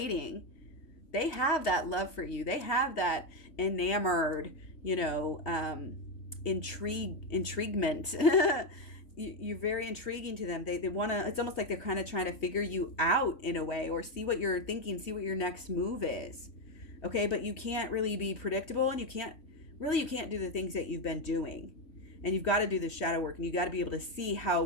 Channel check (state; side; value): late; right; 3.2 ms